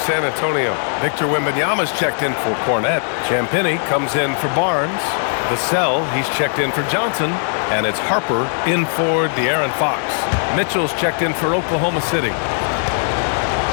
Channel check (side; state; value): right; silent; 65 dB below the other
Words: Antonio. Victor Wembanyama's checked in for Cornette. Champagnie comes in for Barnes. Vassell, he's checked in for Johnson. And it's Harper in for De'Aaron Fox. Mitchell's checked in for Oklahoma City.